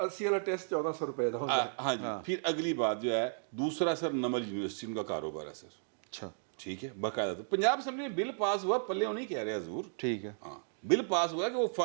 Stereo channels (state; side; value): silent; left; digital silence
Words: والا ٹیسٹ 1400 روپے کا ہوتا ہے. ہاں جی. پھر اگلی بات جو ہے دوسرا سر نمل یونیورسٹی ان کا کاروبار ہے سر. اچھا ٹھیک ہے باقاعدہ. تو پنجاب اسمبلی میں بل پاس ہوا, پلے نہیں کہہ رہے حضور, ٹھیک ہے. ہاں بل پاس ہوا کہ وہ